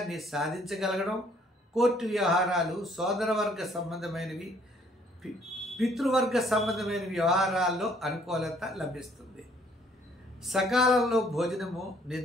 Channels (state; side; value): normal; both; correlation 0.63